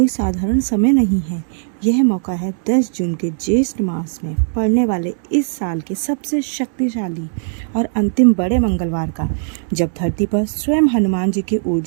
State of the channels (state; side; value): silent; left; digital silence